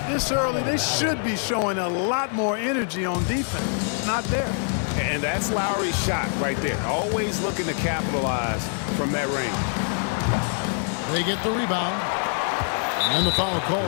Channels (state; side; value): silent; right; 62 dB below the other